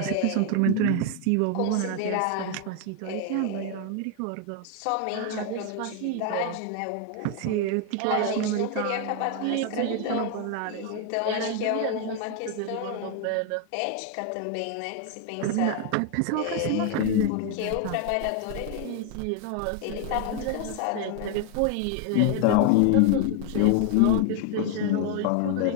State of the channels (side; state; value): both; different; correlation 0.01